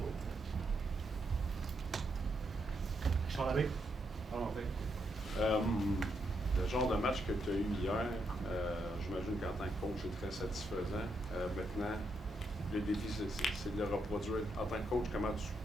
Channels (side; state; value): both; normal; correlation 0.80